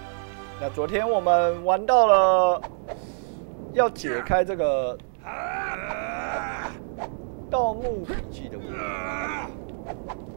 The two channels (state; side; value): silent; left; digital silence